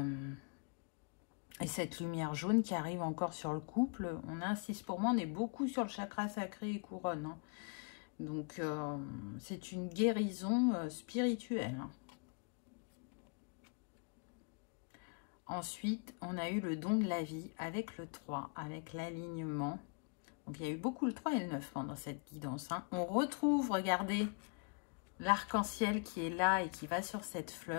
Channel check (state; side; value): quieter; right; 38.0 dB